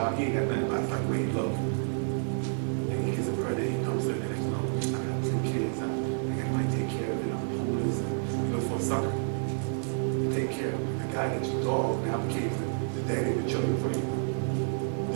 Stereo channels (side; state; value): left; silent; 58 dB below the other